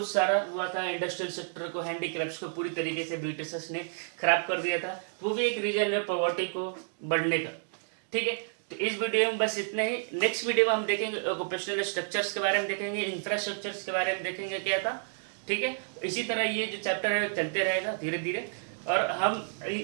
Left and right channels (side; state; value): left; silent; digital silence